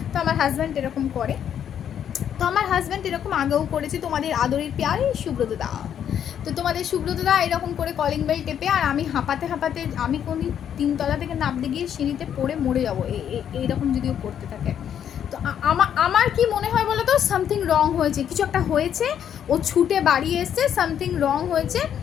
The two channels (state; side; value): quieter; right; 9.2 dB